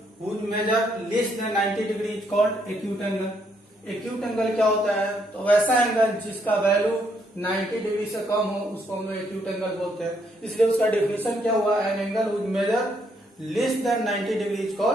whose measure less than 90 degree is called acute angle. Acute angle क्या होता है, तो वैसा एंगल जिसका वैल्यू 90 डिग्री से कम हो उसको हम लोग एक्यूट एंगल बोलते हैं। इसलिए उसका डिफिनेशन क्या हुआ, an angle whose measure less than 90 degree is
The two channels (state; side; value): normal; both; correlation 0.73